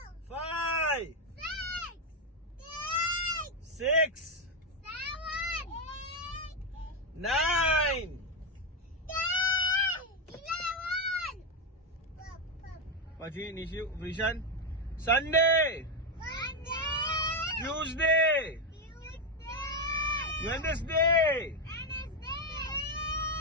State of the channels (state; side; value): normal; both; correlation 0.06